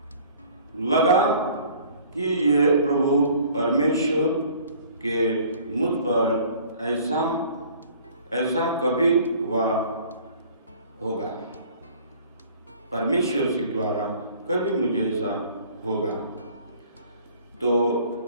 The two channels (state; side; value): inverted; both; correlation -0.52